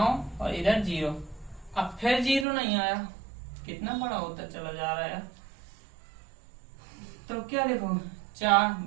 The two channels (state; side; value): drops out; left; at 2.5 s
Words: और इधर 0। अब फिर 0 नहीं आया, कितना बड़ा होता चला जा रहा है, तो क्या लिखो,